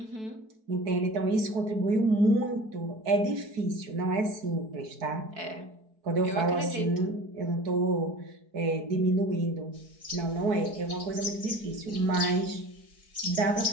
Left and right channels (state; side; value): late; left; 4.6 ms